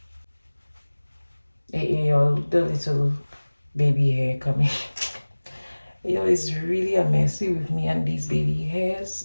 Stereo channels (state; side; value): inverted; both; correlation -1.00